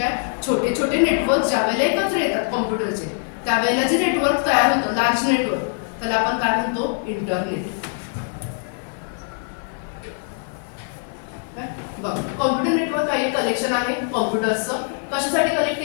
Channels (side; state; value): right; silent; 57 dB below the other